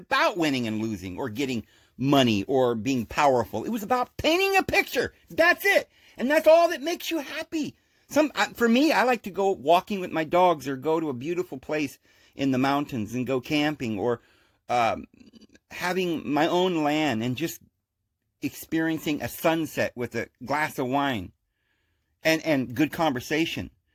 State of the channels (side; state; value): both; identical; correlation 1.00